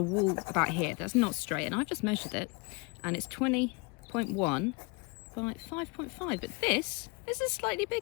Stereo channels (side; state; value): right; quieter; 29.2 dB